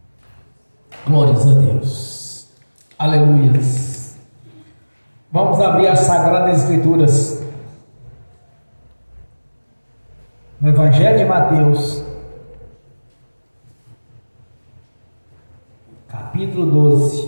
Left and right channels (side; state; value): both; inverted; correlation -1.00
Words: Glórias a Deus. Aleluias. Vamos abrir as Sagradas Escrituras no Evangelho de Mateus, capítulo